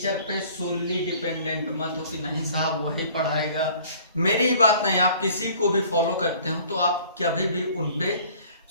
पे सोली डिपेंडेंट मत हो कि नहीं साहब वही पढ़ाएगा। मेरी ही बात नहीं, आप किसी को भी फॉलो करते हो तो आप कभी भी उन पे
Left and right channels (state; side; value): inverted; both; correlation -0.52